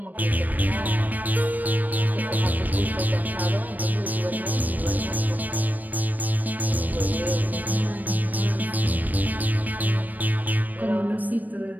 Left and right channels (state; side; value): late; left; 0.084 ms